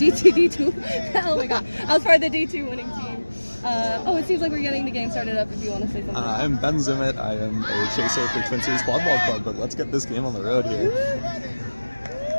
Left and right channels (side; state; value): both; inverted; correlation -1.00